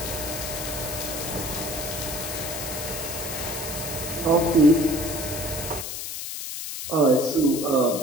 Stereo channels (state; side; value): noise; left; hiss, 6 dB below the sound